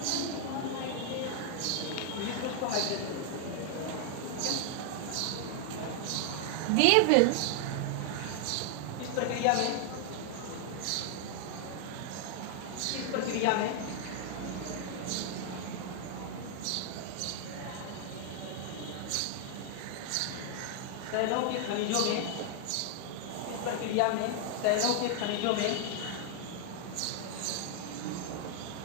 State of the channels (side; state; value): both; different; correlation 0.00